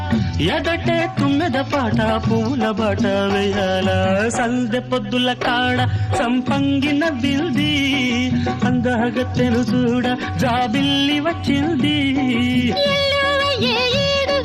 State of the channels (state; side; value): identical; both; correlation 1.00